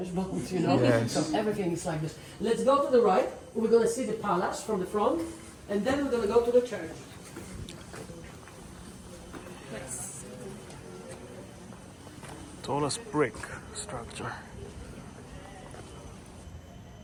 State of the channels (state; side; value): identical; both; correlation 1.00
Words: bond, you know? Yes. So everything is like this. Let's go to the right. We're going to see the palace from the front, and then we're going to go to the church. Nice. Tallest brick structure.